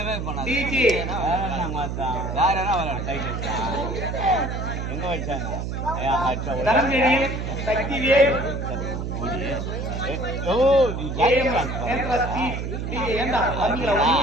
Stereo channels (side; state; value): right; noise; hum, 4 dB below the sound